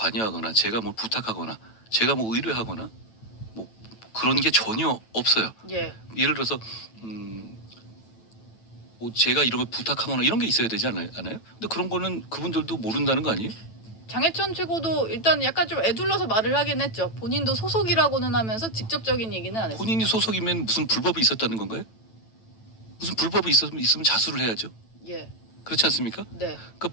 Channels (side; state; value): right; late; 9.1 ms